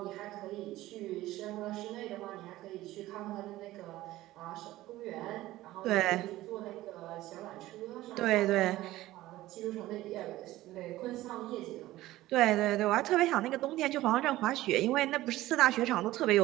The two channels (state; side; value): quieter; left; 16.4 dB